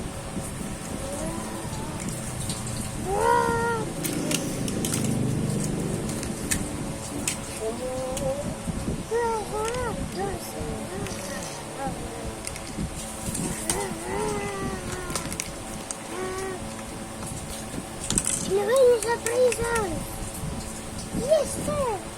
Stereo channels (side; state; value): both; identical; correlation 1.00